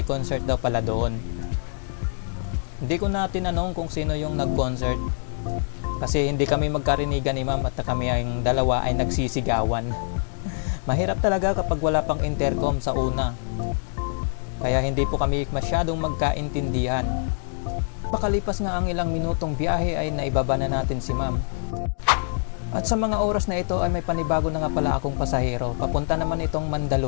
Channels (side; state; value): right; silent; digital silence